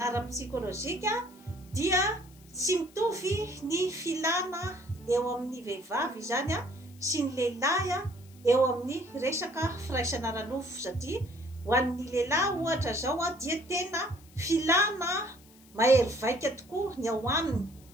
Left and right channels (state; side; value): noise; left; hiss, 26 dB below the sound